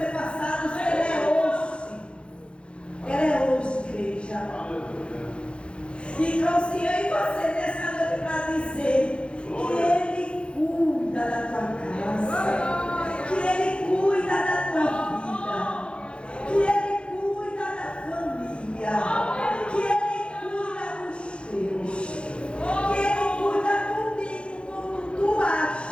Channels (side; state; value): right; late; 0.057 ms